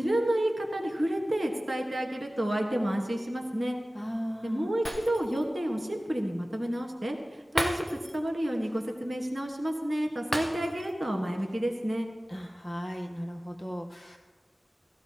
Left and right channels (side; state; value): both; normal; correlation 0.97